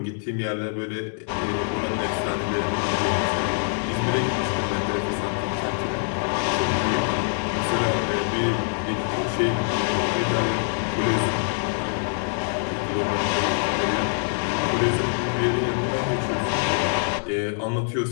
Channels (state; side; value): silent; right; digital silence